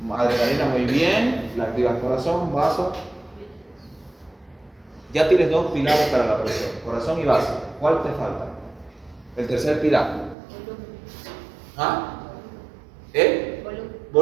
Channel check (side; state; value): left; drops out; at 10.4 s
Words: Adrenalina, muy bien, la activa el corazón, vaso. Ya tienes dos pilares para la presión, corazón y vaso. ¿Cuál te falta? El tercer pilar. ¿Ah? ¿El?